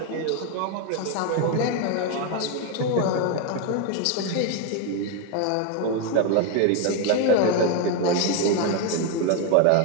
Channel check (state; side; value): different; both; correlation 0.02